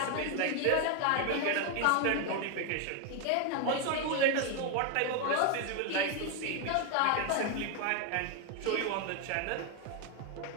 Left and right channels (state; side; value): different; both; correlation 0.01